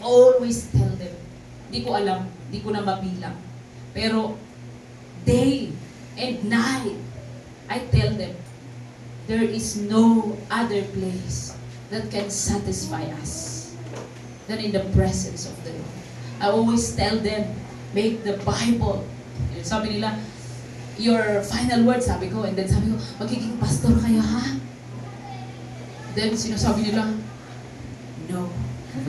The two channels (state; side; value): identical; both; correlation 1.00